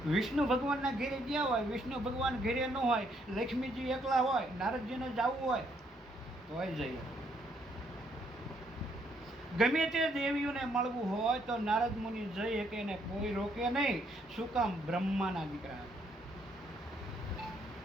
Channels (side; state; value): both; normal; correlation 0.71